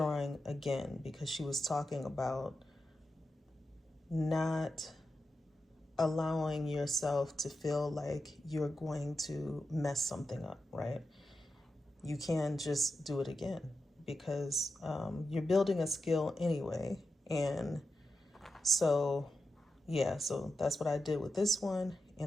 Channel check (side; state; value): both; normal; correlation 0.89